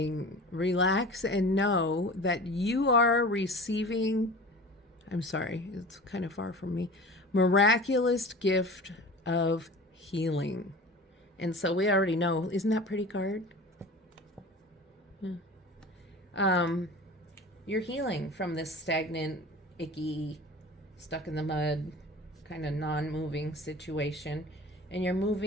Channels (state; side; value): normal; both; correlation 0.38